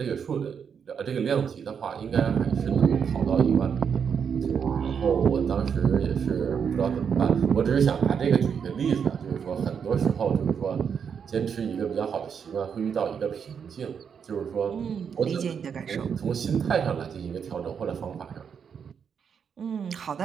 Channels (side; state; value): left; quieter; 7.0 dB